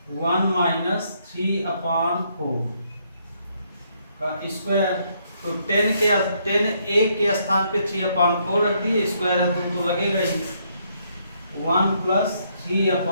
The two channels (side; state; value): both; inverted; correlation -0.72